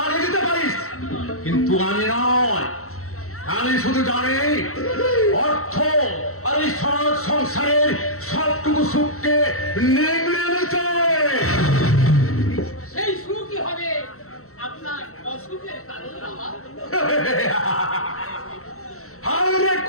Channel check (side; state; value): right; late; 0.63 ms